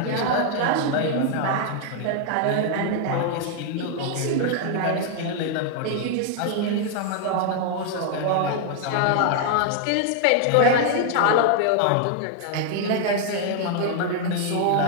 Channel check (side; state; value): both; different; correlation 0.00